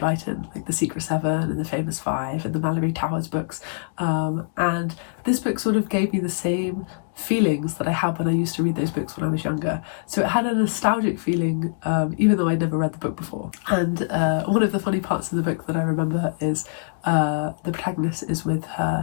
like The Secret Seven and The Famous Five and the Mallory Towers books, and this book sort of gave me the same feelings that I had when I used to read those books when I was younger. So it had a nostalgic feeling, even though I'd never read the book before. And one of the funny parts of the book that I remember is the protagonist is with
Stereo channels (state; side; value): silent; right; digital silence